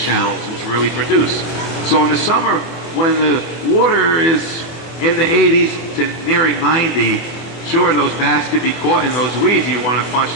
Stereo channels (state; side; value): late; right; 24 ms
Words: which really produce. So in the summer, when the water is in the 80s to nearing 90, sure, those bass could be caught in those weeds. You want to punch